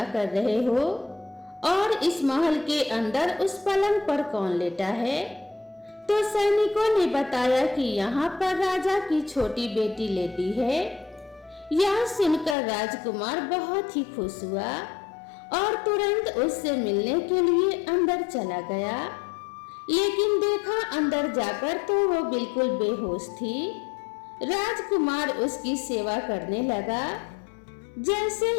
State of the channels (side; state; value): right; drops out; at 12.6 s